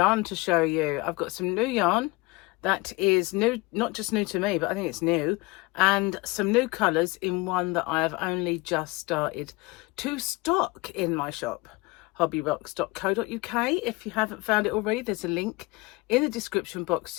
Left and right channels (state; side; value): quieter; right; 23.9 dB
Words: to show you. I've got some new yarn that is new, not just new to me, but I think it's new, and some new colours in one that I have only just started to stock in my shop, hobbyrocks.co.uk. If you haven't found it already, there's a link in the description box